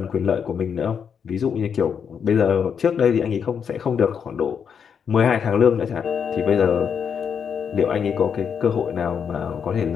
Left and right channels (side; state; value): right; quieter; 7.1 dB